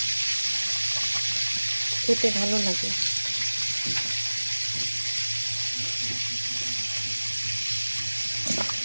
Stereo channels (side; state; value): both; inverted; correlation -1.00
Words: খেতে ভালো লাগে।